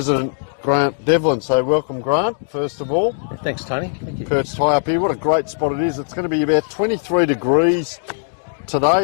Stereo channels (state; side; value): silent; right; digital silence